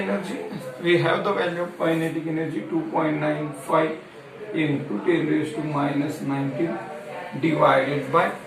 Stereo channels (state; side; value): identical; both; correlation 1.00